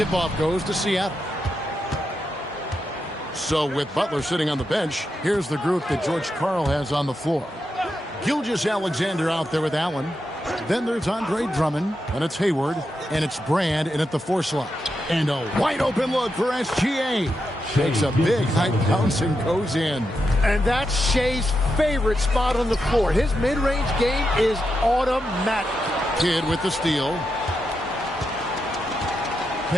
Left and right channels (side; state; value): both; normal; correlation 0.86